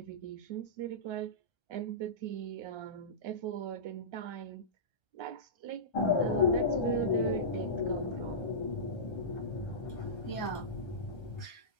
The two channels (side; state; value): right; late; 1.3 ms